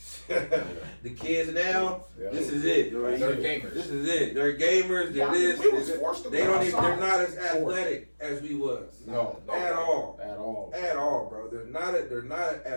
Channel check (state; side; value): inverted; both; correlation -1.00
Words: The kids now, Yeah. this is it. They're gamers. This is it. They're gamers. They're Yeah, this. we was they're forced to they go don't even, outside. they're not as athletic as we was. No, At all. at all, At all, bro. They're not